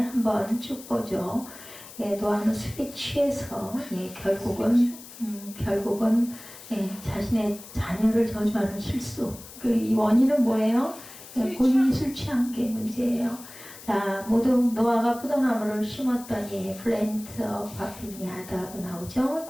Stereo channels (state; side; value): noise; left; hiss, 16 dB below the sound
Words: 쭉 보죠. 예, 노아는 술에 취해서 결국은 자신의 자녀를 저주하는 실수. 이 원인은 뭐예요? 본인이 술 취한 게 문제예요. 자, 모두 노아가 포도나무를 심었더니 플랜트와 빈야드하고 나오죠.